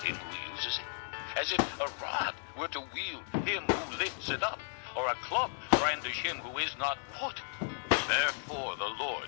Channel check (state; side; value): silent; right; 55 dB below the other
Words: him who uses it? As if a rod were to wield him who lifts it up, or a club brandish him who is not wood. Therefore the